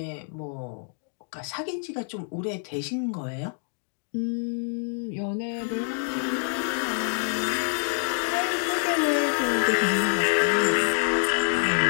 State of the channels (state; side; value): silent; right; 56 dB below the other